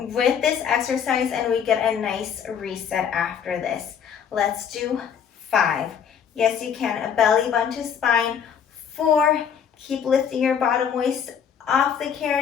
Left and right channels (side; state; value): right; quieter; 7.8 dB